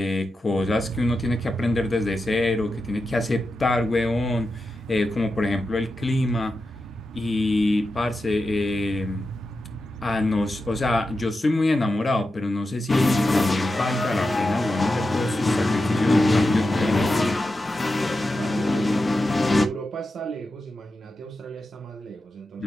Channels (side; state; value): both; normal; correlation 0.90